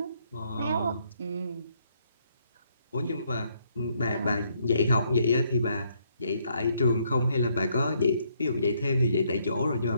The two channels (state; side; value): inverted; both; correlation -0.71